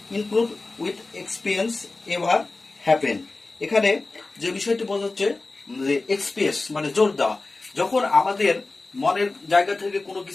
include with experience ever happen. এখানে যে বিষয়টি বোঝাচ্ছে যে এক্সপ্রেস মানে জোর দেওয়া, যখন আমাদের মনের জায়গা থেকে কোনো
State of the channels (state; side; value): quieter; right; 3.4 dB